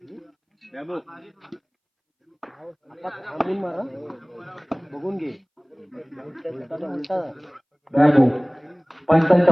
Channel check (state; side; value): identical; both; correlation 1.00